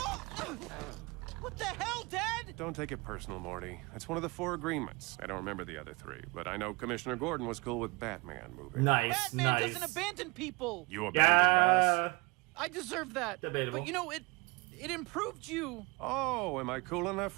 What the hell, Dad? Don't take it personal, Morty. It's one of the 4 agreements. I don't remember the other 3, but I know Commissioner Gordon was cool with Batman moving. Nice, Batman nice. doesn't abandon people. You abandoned us? Yeah. I deserve that. Debatable. But you know, it improved you. Oh, am I cool enough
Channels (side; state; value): left; quieter; 26.7 dB